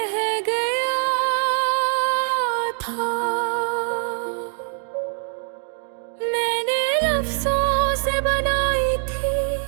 गया था। मैंने लफ्ज़ों से बनाई थी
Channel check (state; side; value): silent; left; 63 dB below the other